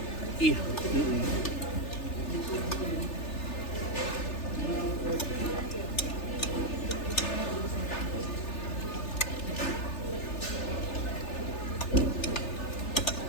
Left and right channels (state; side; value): late; right; 3.3 ms